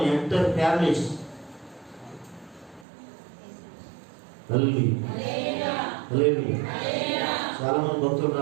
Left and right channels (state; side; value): drops out; left; at 2.9 s